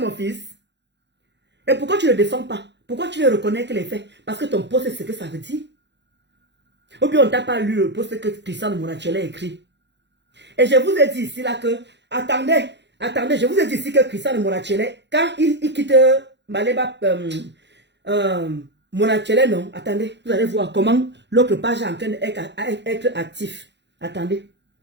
fils. Et pourquoi tu ne le défends pas? Pourquoi tu veux reconnaître les faits? Parce que ton poste, c'est ce que ça veut dire. Ou bien on t'a pas lu le poste que Cristiano Monaco a écrit. Et je vous ai dit ici là que, attendez, je vous ai dit ici que Cristiano Monaco, quand il quitte Maleba, Monaco, non, attendez, vous allez voir comment l'autre page est en train d'être actif. Attendez.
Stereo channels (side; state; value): left; late; 0.51 ms